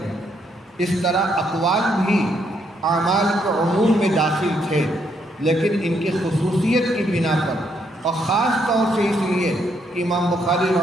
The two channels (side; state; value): both; normal; correlation 0.74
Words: ہیں۔ اس طرح اقوال بھی اعمال کے عموم میں داخل تھے، لیکن ان کی خصوصیت کی بنا پر، اور خاص طور سے اس لیے کہ امام بخاری